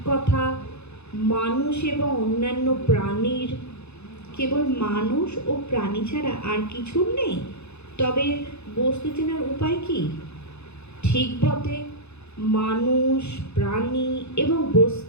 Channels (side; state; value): right; late; 0.80 ms